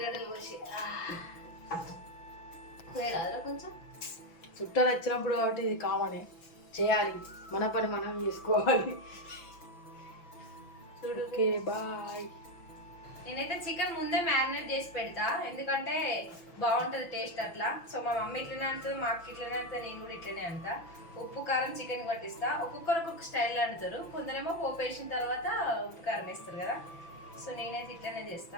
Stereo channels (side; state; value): right; late; 6.0 ms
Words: కోసి కొంచెం చుట్టాలు వచ్చినప్పుడు కాబట్టి ఇది కామనే చేయాలి. మన పని మనం చేసుకోవాలి. Okay bye. నేనైతే చికెన్ ముందే మ్యారినేట్ చేసి పెడతా, ఎందుకంటే బాగుంటుంది టేస్ట్ అట్లా. సో మా మమ్మీ ఇట్లనే అంటుంది, మా అక్క ఇట్లనే అంటుంది, నేను కూడా ఇట్లనే అంటా. ఉప్పు కారం చికెన్ పట్టిస్తా. ఒక్కొక్కరు ఒక్కొక్క స్టైల్ అంటారు, కొందరేమో పోపు వేసిన తర్వాత ఉప్పు కారం వేస్తారు కదా. సో నేనైతే ఇట్లనే